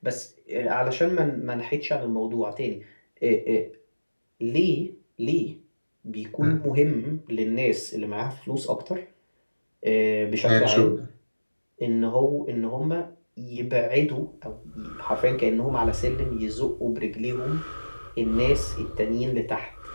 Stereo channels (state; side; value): inverted; both; correlation -1.00